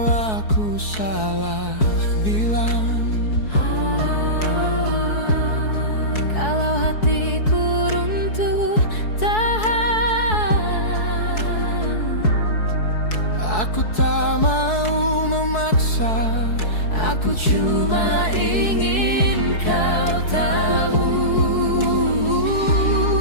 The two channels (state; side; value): late; right; 4.7 ms